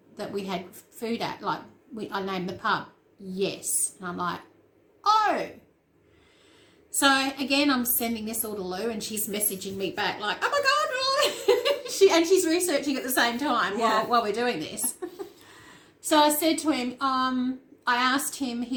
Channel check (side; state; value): both; identical; correlation 1.00